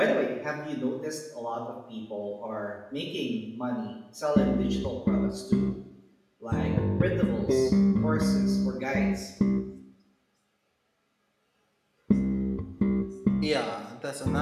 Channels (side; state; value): both; identical; correlation 1.00